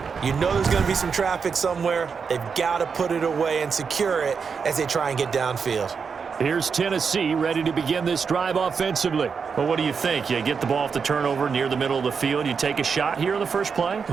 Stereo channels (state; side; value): quieter; left; 5.8 dB